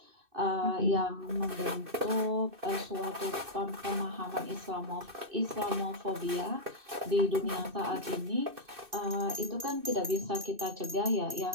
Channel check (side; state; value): left; late; 2.6 ms